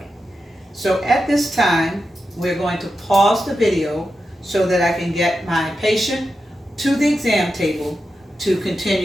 So at this time, we're going to pause the video so that I can get my patient to the exam table to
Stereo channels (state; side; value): normal; both; correlation 0.89